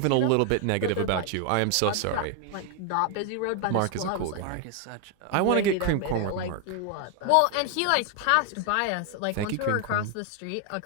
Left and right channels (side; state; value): both; different; correlation 0.01